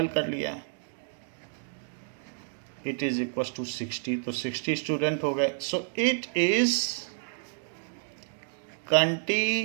कर लिया, इट इज इक्वल टू 60, तो 60 स्टूडेंट हो गए। सो it is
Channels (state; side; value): silent; left; 58 dB below the other